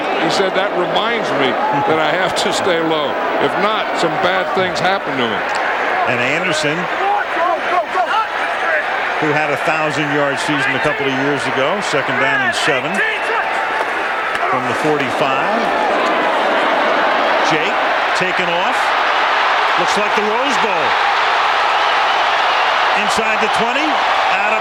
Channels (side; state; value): both; identical; correlation 1.00